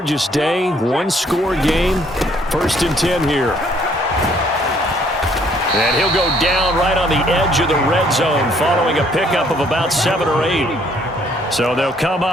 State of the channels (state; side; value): normal; both; correlation 0.64